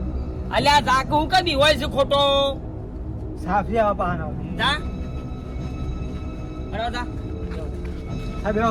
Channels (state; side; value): identical; both; correlation 1.00